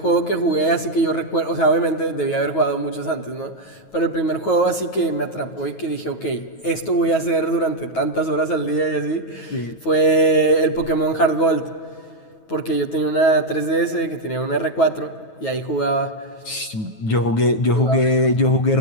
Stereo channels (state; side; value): late; right; 9.3 ms